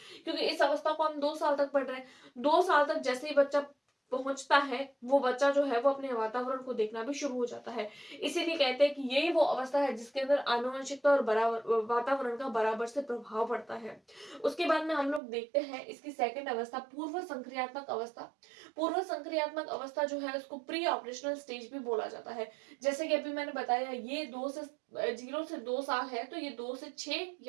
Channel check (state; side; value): drops out; left; at 15.2 s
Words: क्योंकि इस अवस्था को हम 2 साल तक पढ़ रहे हैं, 2 साल तक जैसे ही बच्चा पहुंचता है, वो बच्चा जो है वो अपने वातावरण को देखना भी शुरू हो जाता है। इसीलिए कहते हैं कि यही वो अवस्था है जिसके अंदर आनुवंशिकता और बराबर वातावरण का बराबर से प्रभाव पड़ता है। उसके बाद में हम लोग देखते हैं इसकी सेकंड अवस्था, पूर्व संक्रियात्मक अवस्था। पूर्व संक्रियात्मक अवस्था जो है उसको प्री ऑपरेशनल स्टेज भी बोला जाता है। जैसे कि अभी मैंने बताया, ये 0 से 2 साल है, तो ये 2 से 6